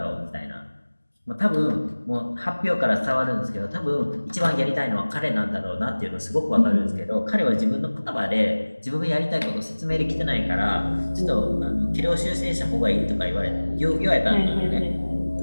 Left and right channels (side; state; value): both; inverted; correlation -1.00